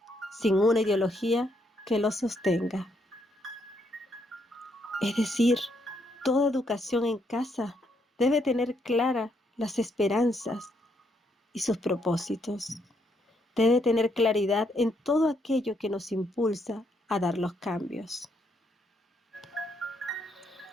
sin una ideología que los sostenga. Es decir, toda educación en casa debe tener claras las esperanzas y sus propósitos. Debe tener claridad en todo aquello que nos impulsa a dar los cambios.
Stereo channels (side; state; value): both; normal; correlation 0.75